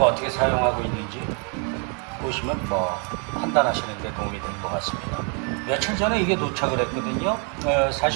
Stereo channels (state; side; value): quieter; left; 38.2 dB